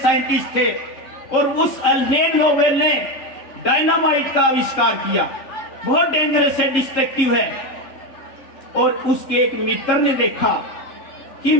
थे, और उस अल्फ्रेड नोबेल ने डायनामाइट का आविष्कार किया। बहुत डेंजरस है, डिस्ट्रक्टिव है। और उसके एक मित्र ने देखा कि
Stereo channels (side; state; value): right; late; 3.8 ms